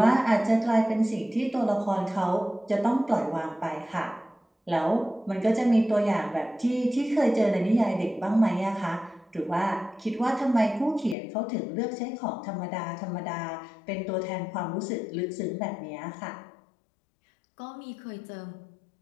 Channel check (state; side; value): drops out; right; at 11.2 s